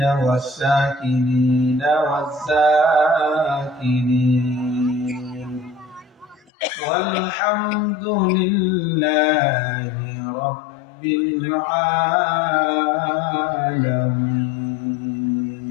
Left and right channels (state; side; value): drops out; right; at 6.4 s